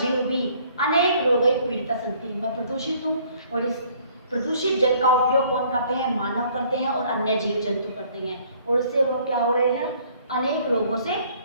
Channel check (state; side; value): inverted; both; correlation -0.60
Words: भी अनेक रोगै पीड़िता सन्ति, मैं प्रदूषित हूँ और इस प्रदूषित जल का उपयोग कौन करते हैं, मानव करते हैं और अन्य जीव जंतु करते हैं और इससे वो क्या हो रहे हैं, अनेक रोगों से